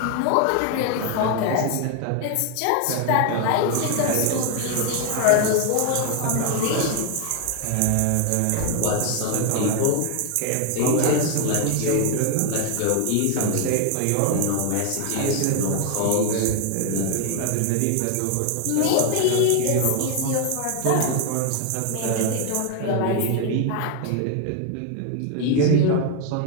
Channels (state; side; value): different; both; correlation 0.01